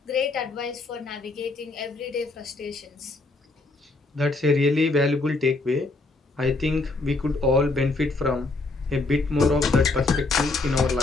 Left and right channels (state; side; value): quieter; right; 3.3 dB